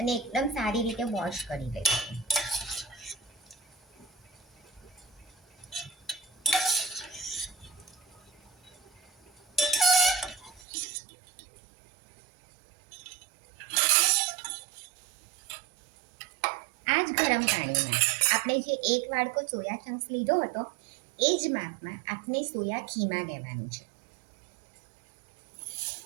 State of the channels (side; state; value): left; drops out; at 10.6 s